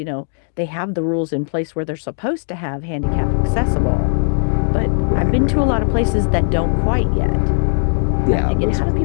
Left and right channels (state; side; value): silent; right; digital silence